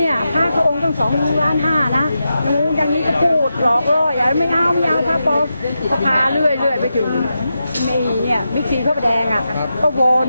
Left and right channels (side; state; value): both; inverted; correlation -0.89